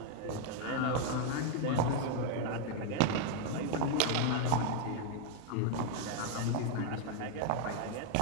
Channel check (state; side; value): different; both; correlation 0.01